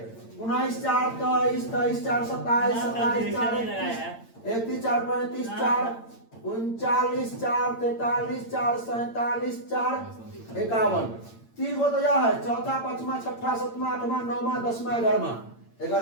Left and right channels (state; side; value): late; right; 8.8 ms